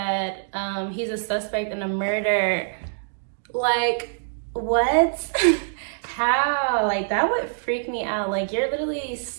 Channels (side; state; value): left; silent; digital silence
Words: he's a suspect in a murder. Like, what? How? Like, that would freak me out. Like, you're literally